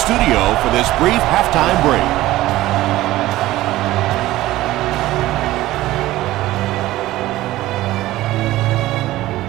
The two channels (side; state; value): left; quieter; 16.3 dB